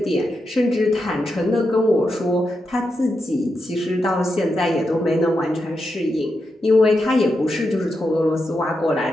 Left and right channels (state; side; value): normal; both; correlation 0.86